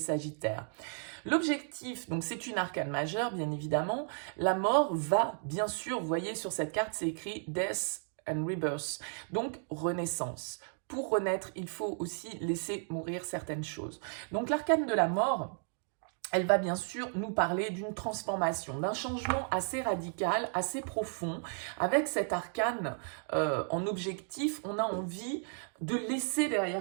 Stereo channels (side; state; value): left; silent; 55 dB below the other